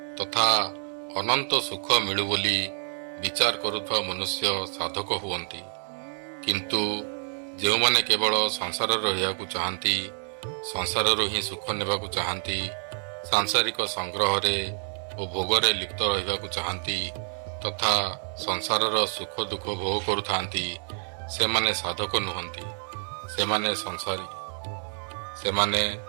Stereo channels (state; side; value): silent; left; 60 dB below the other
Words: ତଥା ଅନନ୍ତ ସୁଖ ମିଳୁ ବୋଲି ବିଚାର କରୁଥିବା ମନୁଷ୍ୟ ସାଧକ ହୁଅନ୍ତି। କିନ୍ତୁ ଯେଉଁମାନେ କେବଳ ସଂସାରରେ ରହିବାକୁ ଚାହାନ୍ତି, ସଂସାରରୁ ହିଁ ସୁଖ ନେବାକୁ ଚାହାନ୍ତି, ସାଂସାରିକ ସଂଗ୍ରହରେ ଓ ଭୋଗରେ ଲିପ୍ତ ରହିବାକୁ ଚାହାନ୍ତି ତଥା ସଂସାରର ସୁଖ ଦୁଃଖ ଭୋଗ କରୁଥାନ୍ତି, ସେମାନେ ସାଧକ ନୁହନ୍ତି, ସେମାନେ ସଂସାରୀ। ସେମାନେ